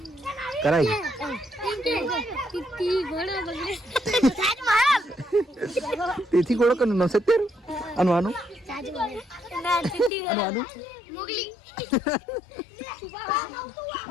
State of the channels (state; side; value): drops out; right; at 10.1 s